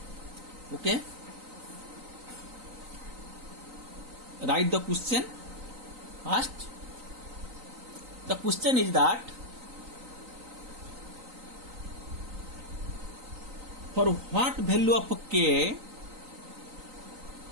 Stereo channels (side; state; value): left; late; 3.9 ms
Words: Okay. Write the question first. The question is that for what value of k